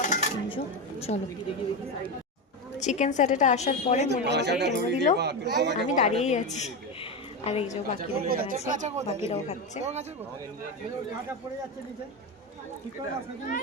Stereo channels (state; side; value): normal; both; correlation 0.15